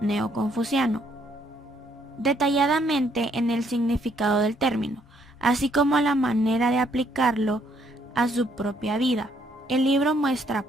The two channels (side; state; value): both; normal; correlation 0.69